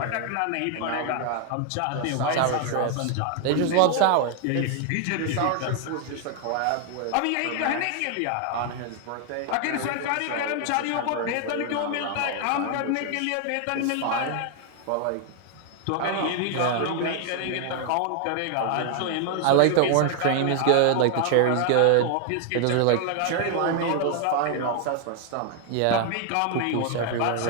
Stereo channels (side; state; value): both; different; correlation 0.00